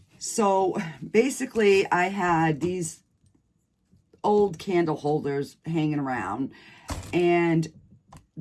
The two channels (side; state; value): both; identical; correlation 1.00